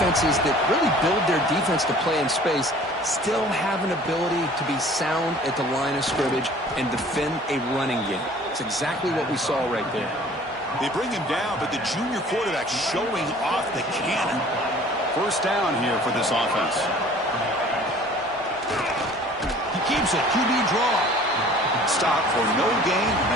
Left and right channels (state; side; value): normal; both; correlation 0.49